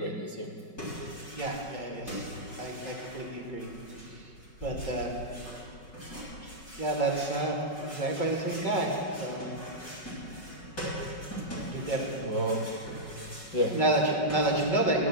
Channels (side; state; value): right; late; 5.3 ms